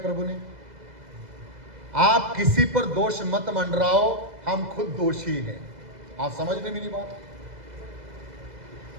ने? आप किसी पर दोष मत मंडराओ, हम खुद दोषी हैं। आप समझ रहे मेरी बात?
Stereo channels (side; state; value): left; late; 2.0 ms